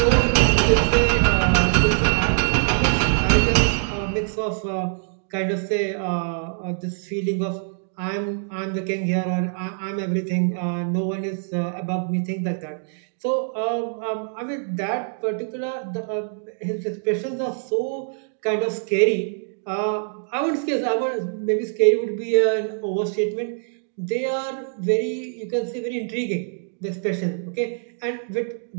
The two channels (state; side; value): silent; left; digital silence